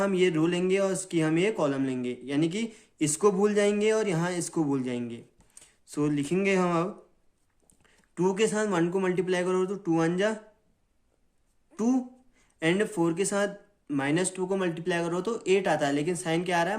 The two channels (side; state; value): both; identical; correlation 1.00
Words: ये रो लेंगे और इसकी हम ये कॉलम लेंगे, यानी कि इसको भूल जाएंगे और यहाँ इसको भूल जाएंगे। सो लिखेंगे हम अब 2 के साथ 1 को मल्टीप्लाई करो तो 2 1 जा 2 एंड 4 के साथ -2 को मल्टीप्लाई करो तो 8 आता है, लेकिन साइन क्या आ रहा